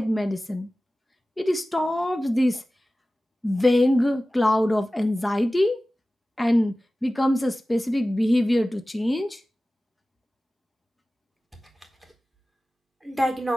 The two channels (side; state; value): both; normal; correlation 0.96